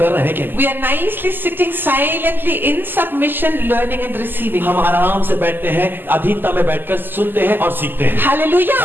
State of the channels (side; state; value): left; late; 0.092 ms